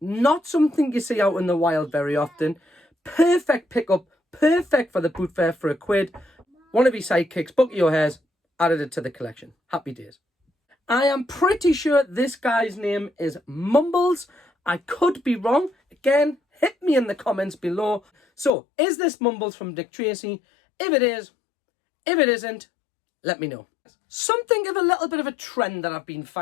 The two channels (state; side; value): drops out; right; at 18.5 s